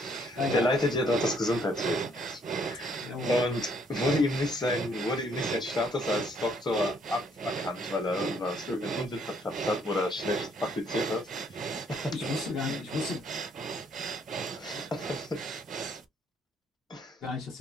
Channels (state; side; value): normal; both; correlation 0.67